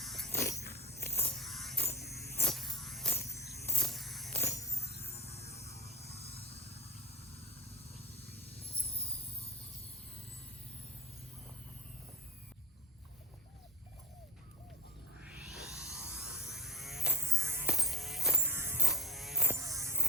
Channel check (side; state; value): both; normal; correlation 0.37